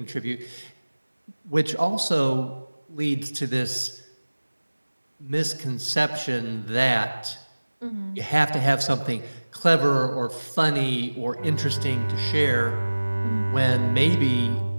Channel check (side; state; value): both; inverted; correlation -1.00